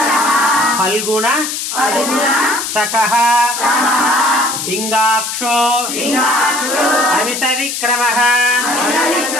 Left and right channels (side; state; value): left; noise; hiss, 4 dB below the sound